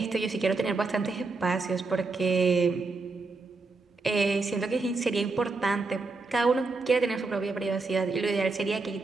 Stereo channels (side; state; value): left; quieter; 3.8 dB